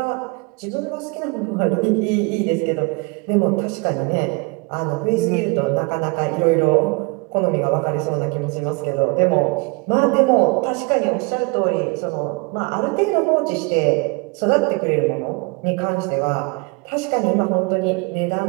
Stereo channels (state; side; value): quieter; left; 30.3 dB